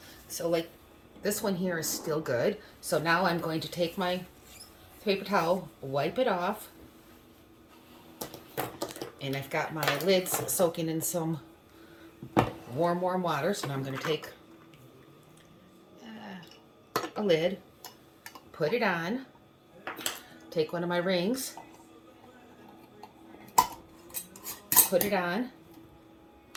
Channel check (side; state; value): both; identical; correlation 1.00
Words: So like this one here is still good. So now I'm going to take my paper towel, wipe it off. And I've got my lids soaking in some warm water. So now I'm going to take a lid, put it on, take one of my rings, put it on,